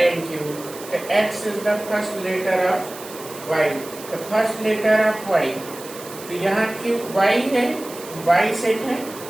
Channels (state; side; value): noise; right; hiss, 15 dB below the sound